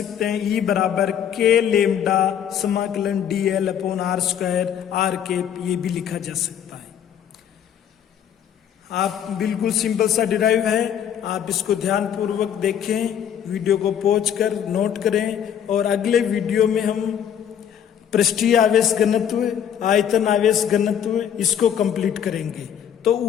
हैं, E बराबर k लेमडा समाकलन dl upon r square r के, ये भी लिखा जा सकता है। आप बिल्कुल सिंपल सा डिराइव है, आप इसको ध्यान पूर्वक देखें, वीडियो को पॉज कर नोट करें, और अगले वीडियो में हम पृष्ठीय आवेश घनत्व, आयतन आवेश घनत्व, इसको कंप्लीट करेंगे। तो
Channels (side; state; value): right; quieter; 9.1 dB